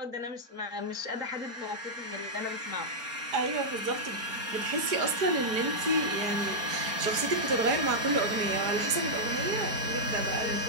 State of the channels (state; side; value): late; left; 4.4 ms